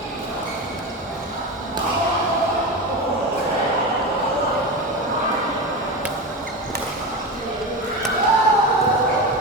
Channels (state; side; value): normal; both; correlation 0.22